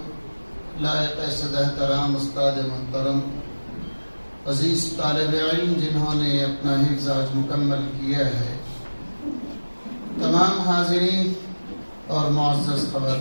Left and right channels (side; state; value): both; inverted; correlation -1.00